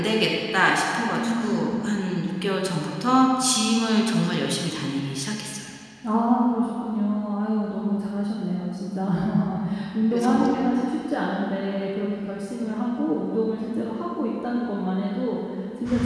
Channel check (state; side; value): identical; both; correlation 1.00